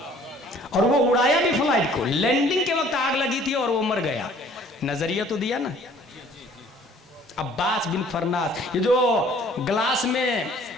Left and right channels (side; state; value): both; normal; correlation 0.55